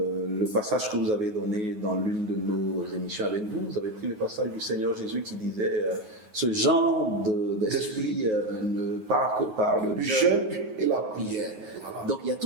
le passage que vous avez donné dans l'une de nos émissions avec vous, vous avez pris le passage du Seigneur Jésus qui disait ce genre d'esprit ne part que par le jeûne Et la prière. Voilà. Donc il y a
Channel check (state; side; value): late; left; 9.4 ms